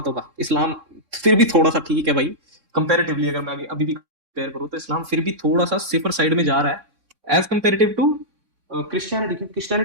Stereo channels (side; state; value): left; late; 3.7 ms